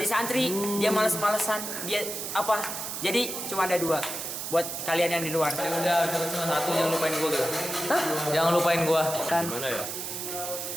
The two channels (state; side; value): noise; right; hiss, 5 dB below the sound